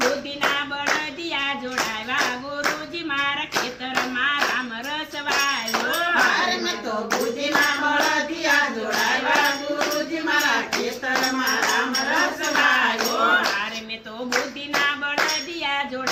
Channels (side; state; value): both; identical; correlation 1.00